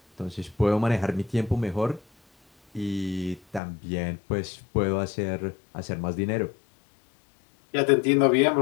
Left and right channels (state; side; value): drops out; right; at 3.6 s